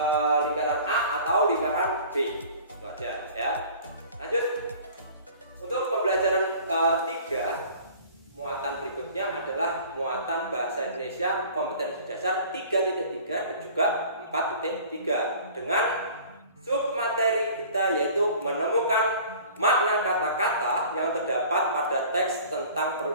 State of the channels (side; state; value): both; inverted; correlation -0.46